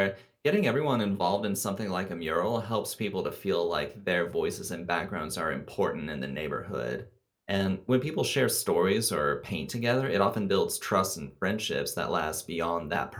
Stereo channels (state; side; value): identical; both; correlation 1.00